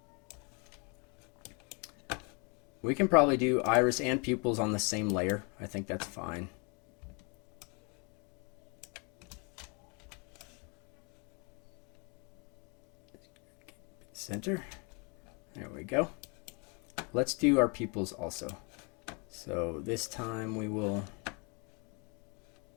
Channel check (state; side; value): quieter; right; 33.1 dB